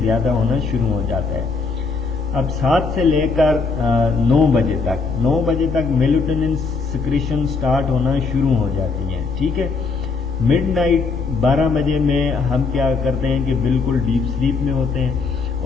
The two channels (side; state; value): right; quieter; 4.4 dB